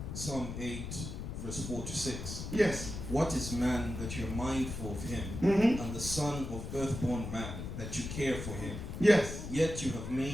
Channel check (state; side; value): noise; left; rumble, 7 dB below the sound